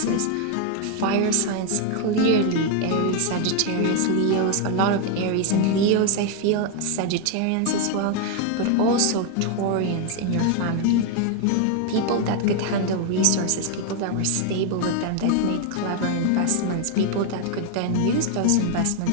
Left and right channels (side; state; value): both; different; correlation 0.01